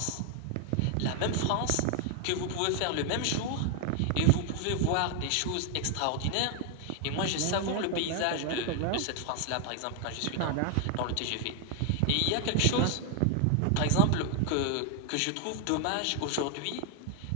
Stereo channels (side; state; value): both; different; correlation 0.00